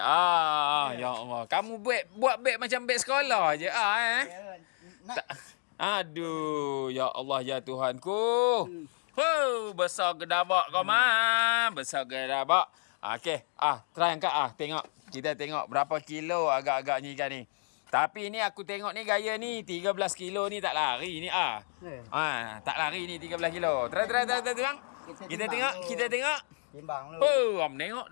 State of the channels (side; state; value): right; silent; 56 dB below the other